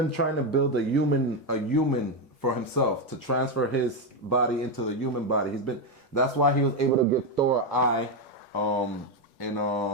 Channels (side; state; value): both; normal; correlation 0.07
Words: trying to build a human for himself, to transfer his body into the human body. That's why he was able to give Thor an eye in